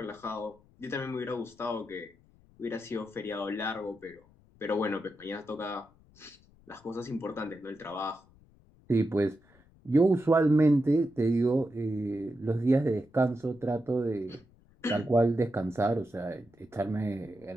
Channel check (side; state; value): left; noise; rumble, 29 dB below the sound